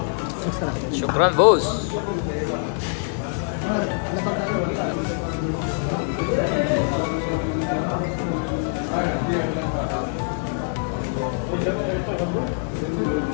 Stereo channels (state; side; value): silent; right; 63 dB below the other